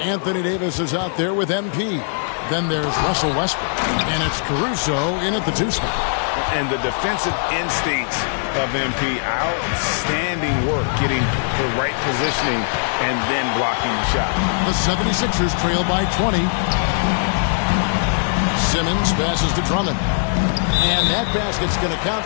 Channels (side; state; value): right; silent; digital silence